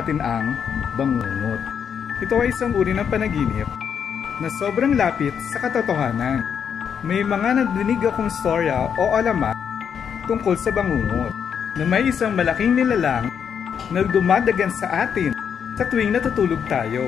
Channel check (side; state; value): right; quieter; 7.6 dB